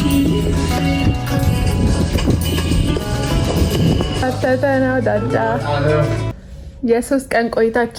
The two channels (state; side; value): identical; both; correlation 1.00